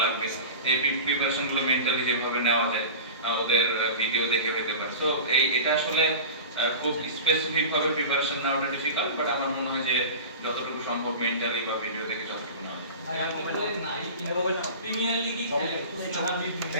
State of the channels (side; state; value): both; inverted; correlation -0.33